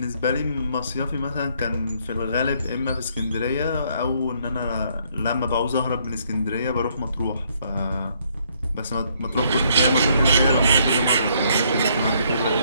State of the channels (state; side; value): inverted; both; correlation -0.69